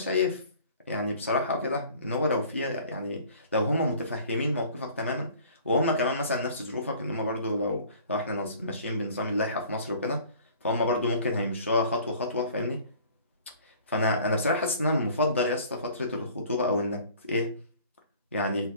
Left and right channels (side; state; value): both; inverted; correlation -0.50